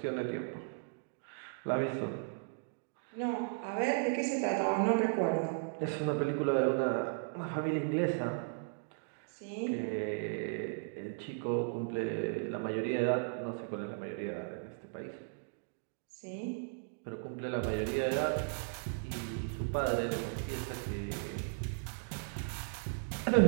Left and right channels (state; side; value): silent; left; digital silence